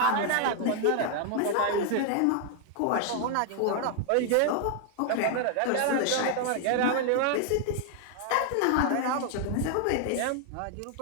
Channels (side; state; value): both; different; correlation 0.00